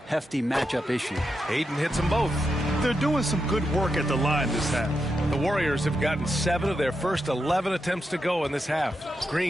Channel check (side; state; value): both; normal; correlation 0.86